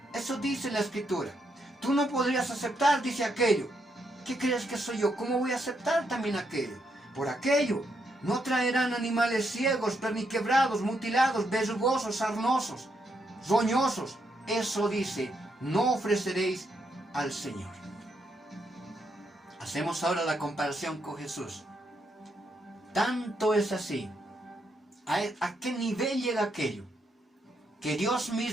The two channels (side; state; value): both; normal; correlation 0.78